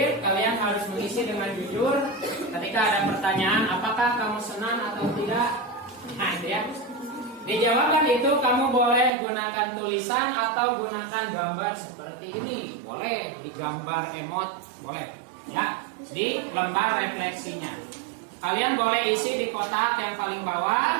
kalian harus mengisi dengan jujur. Ketika ada pertanyaan, apakah kamu senang atau tidak? Nah, itu ya. Dijawabkan itu kamu boleh gunakan tulisan atau gunakan gambar seperti ini. Boleh digambar emot, boleh. Ya, di lembar refleksinya. Kalian boleh isi di kotak yang paling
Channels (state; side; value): drops out; left; at 9.1 s